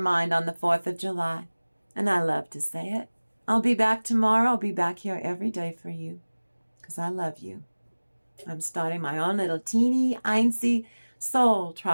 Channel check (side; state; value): both; inverted; correlation -1.00